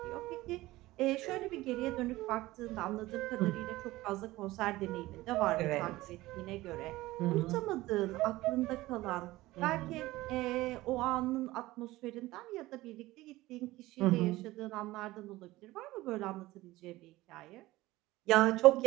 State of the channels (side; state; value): left; quieter; 18.1 dB